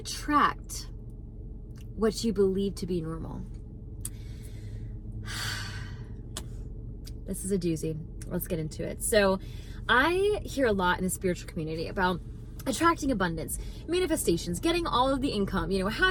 what you believe to be normal. This is a doozy. Let's get into it. So I hear a lot in the spiritual community about attracting abundance, manifestations, getting all of the income,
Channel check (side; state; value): both; identical; correlation 1.00